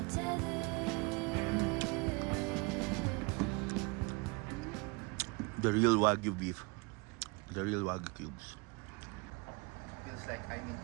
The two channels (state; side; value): quieter; left; 28.6 dB